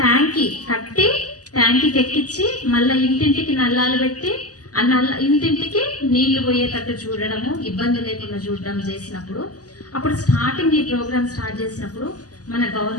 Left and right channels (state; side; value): late; right; 0.67 ms